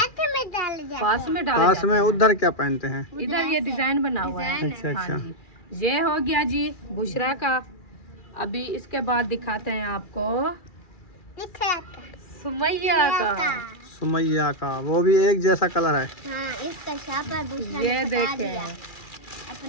में डाल जाते पास में डाल पास में उधर क्या पहनते हैं? इधर ये डिजाइन बना हुआ है। अच्छा हाँ अच्छा। जी, ये हो गया जी बुशरा का। अभी इसके बाद दिखाते हैं आपको सुमैया का। सुमैया का वो भी एक जैसा कलर है। हाँ, इसका शापर दूसरा ये ने बता देखें। दिया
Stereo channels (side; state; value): right; late; 2.4 ms